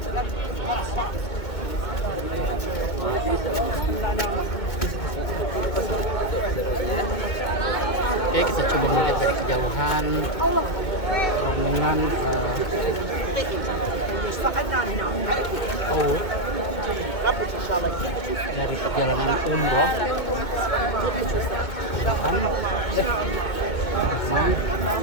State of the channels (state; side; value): late; right; 2.2 ms